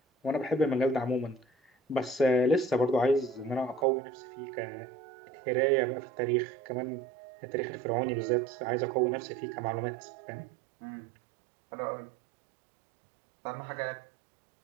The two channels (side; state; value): left; drops out; at 3.9 s